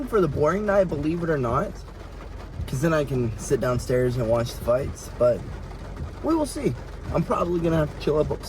for the boring night, believe it or not. Because then I can sit downstairs and watch the fights. But we will see. I'm probably going to have to chill up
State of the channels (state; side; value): identical; both; correlation 1.00